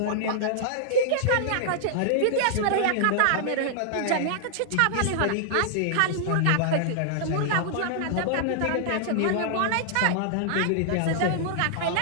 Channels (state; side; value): different; both; correlation -0.01